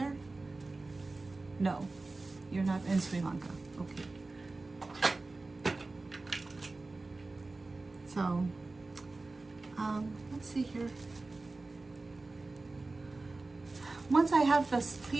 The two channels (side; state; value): left; quieter; 3.4 dB